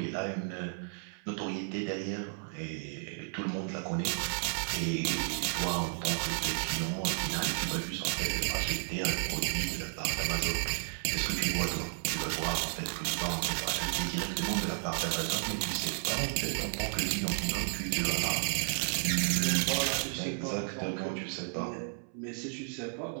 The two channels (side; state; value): left; silent; 56 dB below the other